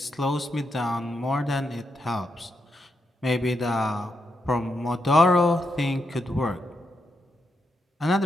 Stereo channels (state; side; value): normal; both; correlation 0.83